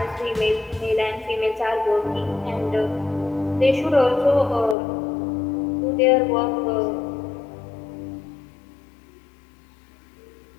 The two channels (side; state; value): right; drops out; at 4.8 s